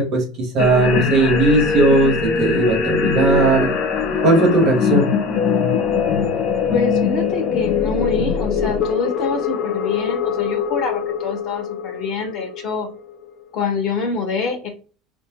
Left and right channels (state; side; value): normal; both; correlation 0.31